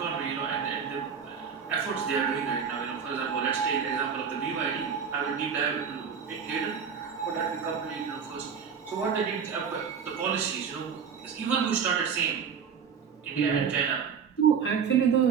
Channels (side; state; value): left; quieter; 6.8 dB